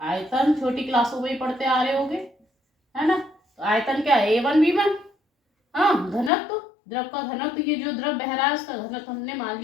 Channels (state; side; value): drops out; right; at 6.3 s